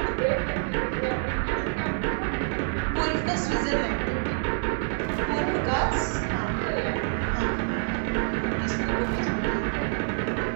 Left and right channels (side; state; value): left; silent; 60 dB below the other